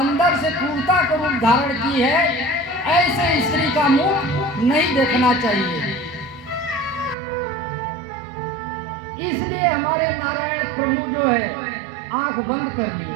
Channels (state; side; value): drops out; left; at 7.2 s